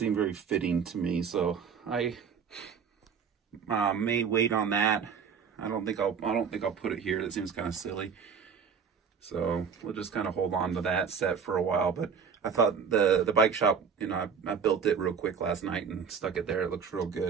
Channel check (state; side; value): quieter; left; 6.6 dB